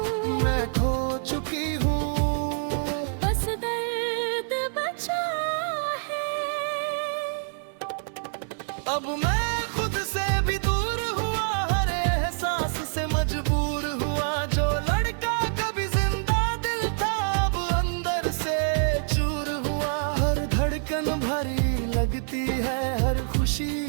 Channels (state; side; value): silent; left; digital silence